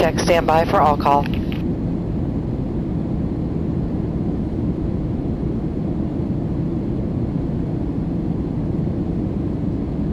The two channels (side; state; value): both; identical; correlation 1.00